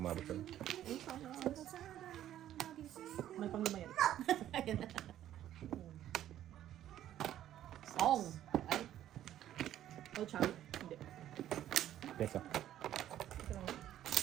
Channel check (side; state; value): left; quieter; 12.0 dB